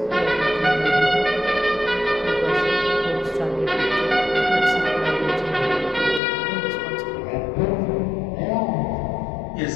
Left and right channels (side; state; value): right; drops out; at 6.2 s